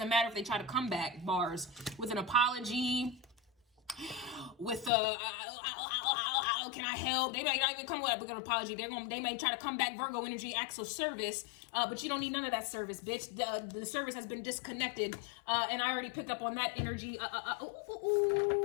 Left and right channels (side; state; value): right; drops out; at 4.9 s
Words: matter if they try to come back, bars, with an apology, with can I help? They might not even come with an apology. They may try to come back, Virgo energy, acts of service, but you don't need none of that service, bitch. The service has been disconnected, and I already picked up on that energy.